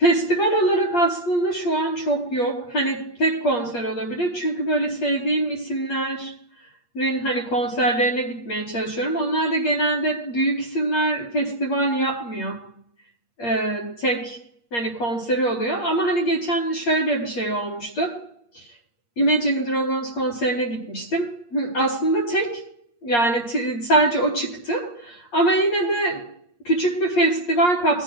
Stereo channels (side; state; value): right; late; 8.5 ms